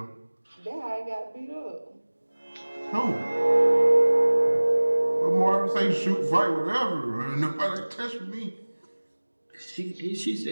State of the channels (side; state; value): both; inverted; correlation -1.00